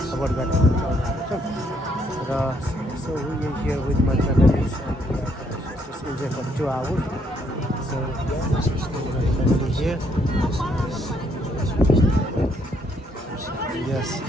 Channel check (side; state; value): both; normal; correlation 0.71